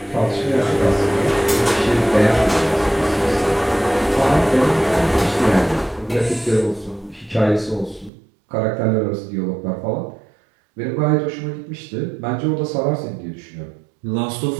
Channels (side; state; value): left; drops out; at 8.1 s